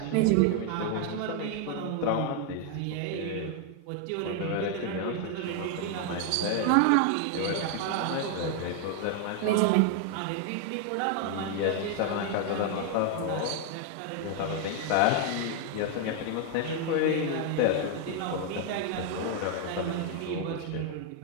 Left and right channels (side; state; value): both; different; correlation 0.00